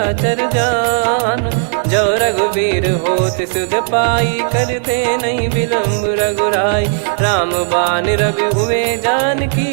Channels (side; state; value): left; silent; digital silence